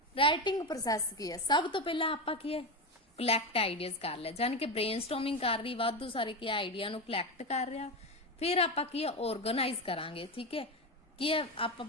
राइटिंग प्रोसैस की है, सब तो पहला आपा की है कलैक्ट आइडियाज कर लिया, जानी कि ब्रेनस्टॉर्मिंग कर रही, वाधू सारे की आइडिया नु कलैक्ट कर रहा। फिर आपा की है ऑर्गेनाइज करांगे। ठीक है, की है आप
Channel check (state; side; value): normal; both; correlation 0.16